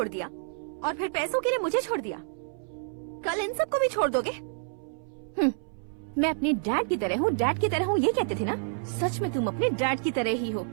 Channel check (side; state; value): left; silent; 59 dB below the other